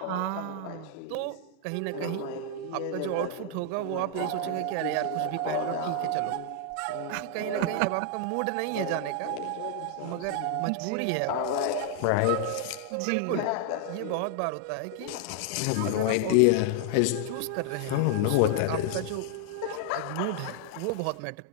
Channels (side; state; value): both; different; correlation 0.00